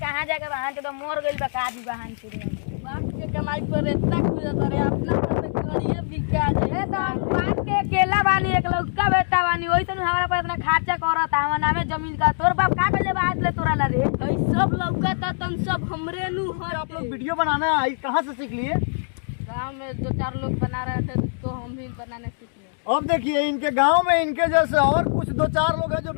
जाके बहान चोदवा मोर गइल बा का दी बहान चोदवा। बाप के कमाई पर इतना खुजत रे अपना पर करिए बिका जाए तो बाप के केला बानी एक लौका बेटा बानी ओइसन हमरा पर इतना खर्चा करत हमर नामे जमीन का तोर बाप का बेले बात ले तोरा ला रे ई सब लौका त तन सब हमरे नु हर आप लोग वीडियो बनाना कहाँ से सीख लिए? गांव में 2-4 लोग बना रहे थे तो हम भी बनाने सीख लिए। अब देखिए इनके गांव में इनके जैसे और कुछ 2-4 लोग हैं जो।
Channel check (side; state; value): right; silent; digital silence